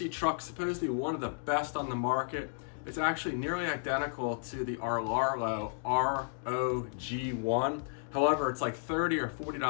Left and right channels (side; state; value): right; silent; digital silence